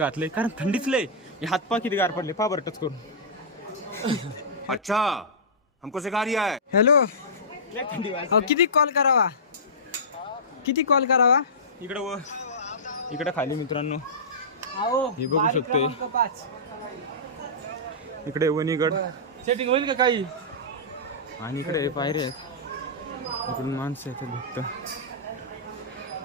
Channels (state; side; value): normal; both; correlation -0.17